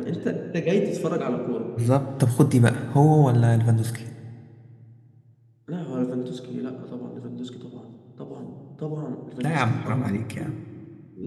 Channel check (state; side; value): identical; both; correlation 1.00